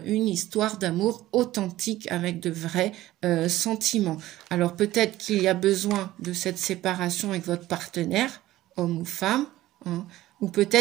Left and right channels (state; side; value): quieter; left; 15.6 dB